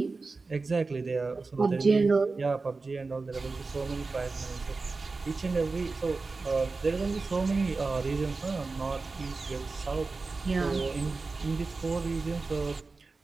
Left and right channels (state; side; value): quieter; left; 3.9 dB